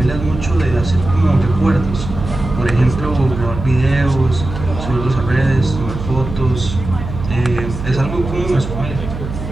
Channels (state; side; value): noise; right; hum, 8 dB below the sound